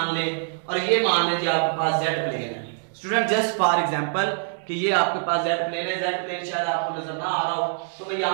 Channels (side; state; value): left; silent; digital silence